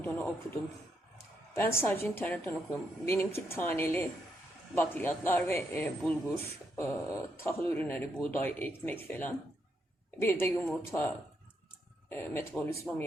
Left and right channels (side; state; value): both; normal; correlation 0.79